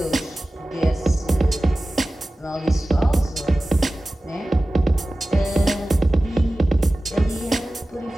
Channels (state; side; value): normal; both; correlation 0.96